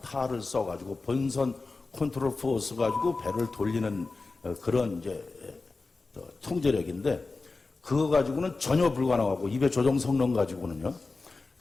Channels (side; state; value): right; quieter; 3.8 dB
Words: 타를 써가지고 본선 컨트롤 포스 가지고 배를 돌리는 그런 이제 통제력인데, 그거 가지고는 전혀 불가능하고, 입의 조종 성능 가지고는요.